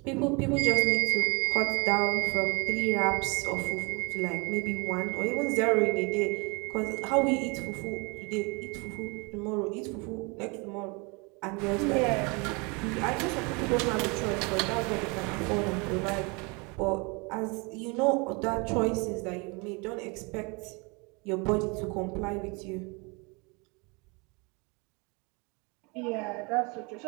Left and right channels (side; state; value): left; quieter; 29.8 dB